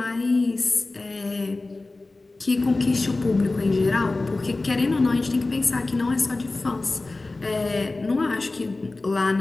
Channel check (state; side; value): quieter; right; 3.2 dB